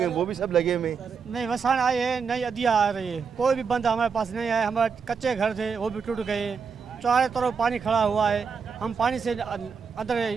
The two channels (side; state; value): left; quieter; 5.8 dB